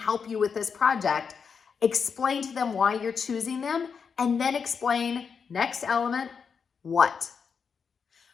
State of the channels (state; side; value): quieter; right; 6.1 dB